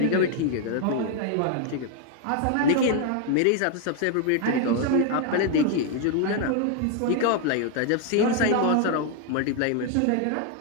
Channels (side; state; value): both; different; correlation 0.00